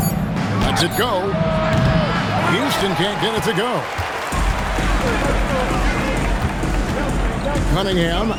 Lets it go. Houston can't get it to go. Cunningham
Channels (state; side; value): identical; both; correlation 1.00